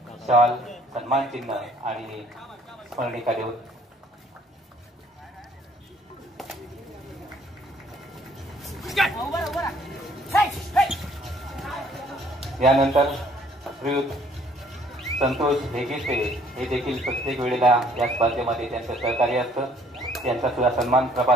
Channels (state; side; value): normal; both; correlation 0.61